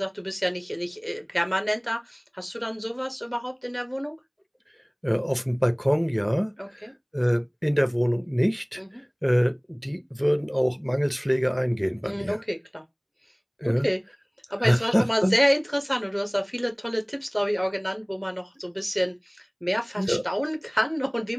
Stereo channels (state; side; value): identical; both; correlation 1.00